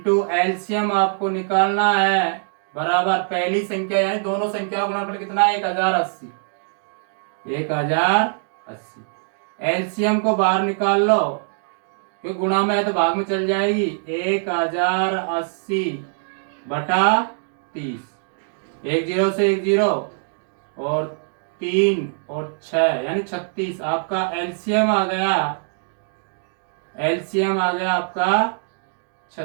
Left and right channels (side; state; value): left; silent; digital silence